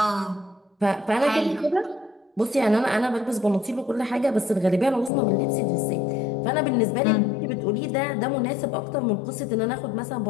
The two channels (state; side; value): drops out; right; at 5.1 s